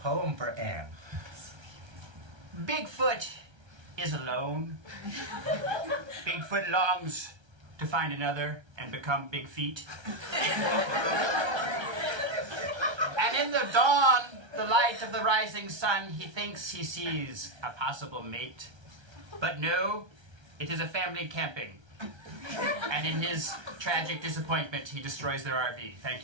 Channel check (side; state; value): left; late; 1.3 ms